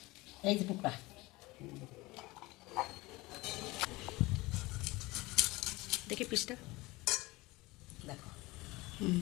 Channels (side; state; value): right; quieter; 21.6 dB